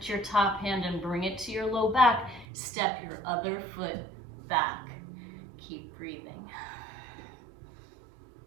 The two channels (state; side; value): drops out; left; at 2.5 s